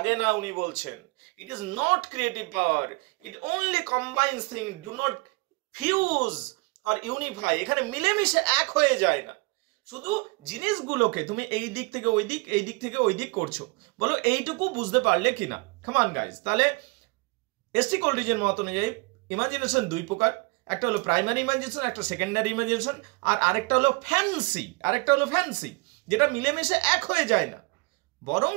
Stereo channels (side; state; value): left; quieter; 27.9 dB